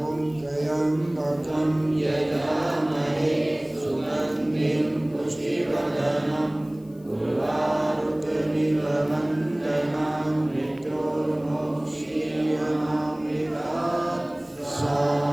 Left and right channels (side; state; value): left; noise; hiss, 29 dB below the sound